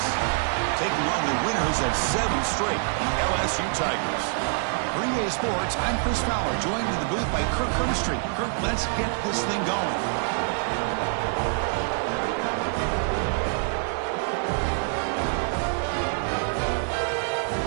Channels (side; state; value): left; silent; 59 dB below the other